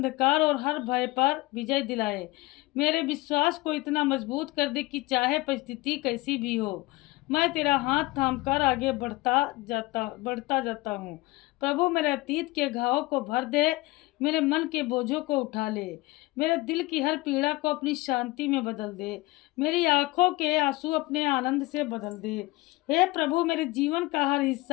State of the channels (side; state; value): right; quieter; 21.1 dB